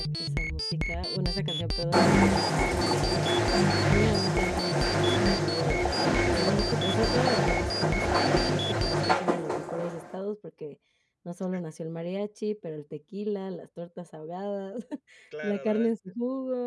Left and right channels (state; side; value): identical; both; correlation 1.00